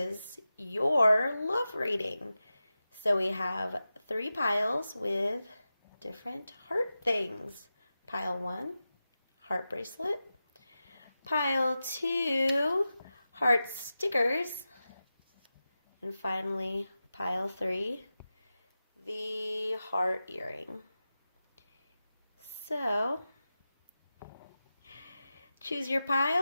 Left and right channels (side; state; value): both; inverted; correlation -0.93